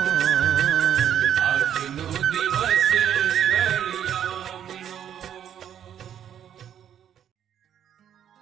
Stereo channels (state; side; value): quieter; left; 9.7 dB